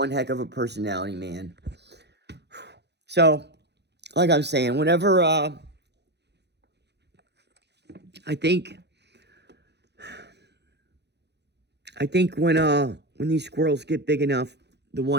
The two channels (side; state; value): left; late; 0.50 ms